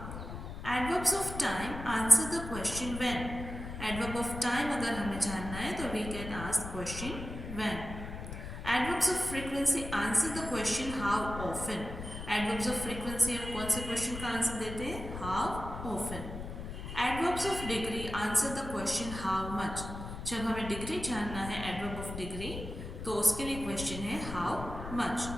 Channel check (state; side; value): noise; left; rumble, 8 dB below the sound